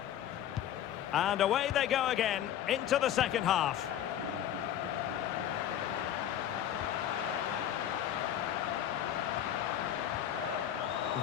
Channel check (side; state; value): right; quieter; 10.8 dB